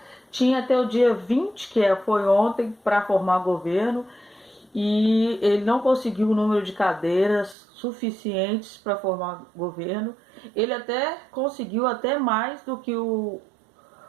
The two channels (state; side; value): drops out; left; at 7.6 s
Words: tinha até o dia 20, foi ontem, para formar governo, e ele não conseguiu o número de cadeiras suficientes para formar governo. Ele até conseguiu até mais do que o